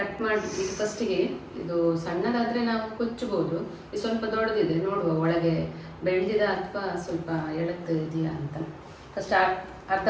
ಮಾಡಿ ಫಸ್ಟಿಗೆ ಇದು ಸಣ್ಣದಾದರೆ ನಾವು ಕೊಚ್ಚಬಹುದು. ಇದು ಸ್ವಲ್ಪ ದೊಡ್ಡದಿದೆ, ನೋಡುವ ಒಳಗೆ ಬೆಳೆದಿದ ಅಥವಾ ಸ್ವಲ್ಪ ಎಳತ್ತು ಇದೆಯಾ ಅಂತ. ಫಸ್ಟ್ ಅರ್ಧ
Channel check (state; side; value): identical; both; correlation 1.00